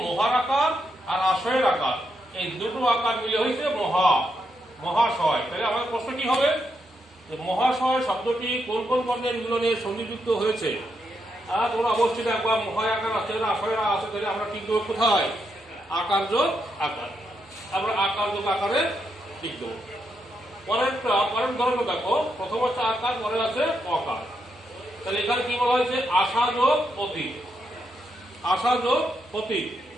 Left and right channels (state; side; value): normal; both; correlation 0.81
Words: মহার আকার আর আশয়ের আকার, এই দুটো আকার মিলে হয়েছে মহাশয়। তাহলে আমাদের প্রশ্ন কি হবে? মহাশয় শব্দটি কোন কোন বর্ণের মিলনে সংযুক্ত হয়েছে? তোমরা অবশ্যই দেখবা মহায় আকার আছে, আশয়ের আছে। তাহলে আমরা ঠিক দেবো কোথায়? আকার যোগ আকার। আমরা আকার যোগ আকারে ঠিক দেবো। পরের ধরনের দেখো, প্রথম হচ্ছে আকার, পরে আছে অকার। তাহলে এখানে কি বলা হয়েছে? আশা যোগ অতীত, আশা যোগ অতীত।